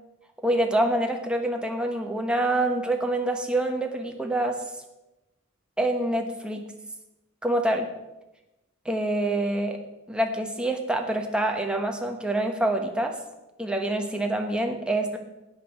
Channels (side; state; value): both; normal; correlation 0.64